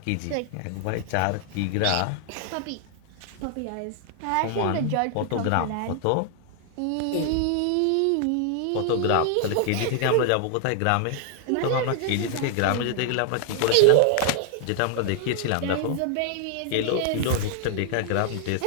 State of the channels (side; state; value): both; different; correlation 0.00